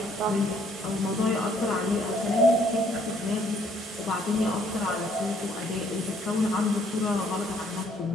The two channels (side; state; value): both; normal; correlation 0.65